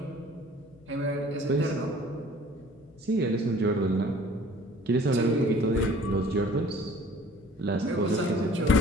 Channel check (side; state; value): both; normal; correlation 0.51